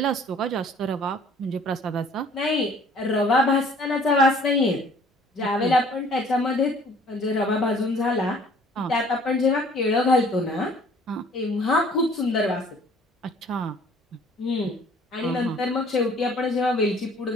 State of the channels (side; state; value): both; normal; correlation 0.55